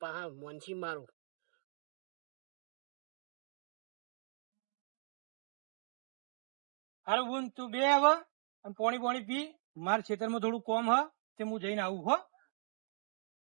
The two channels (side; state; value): left; silent; digital silence